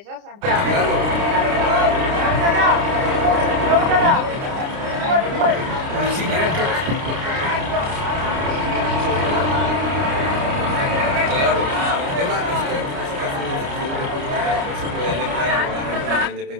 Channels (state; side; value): late; left; 29 ms